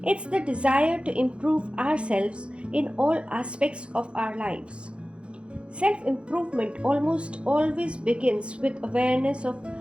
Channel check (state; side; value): late; left; 0.058 ms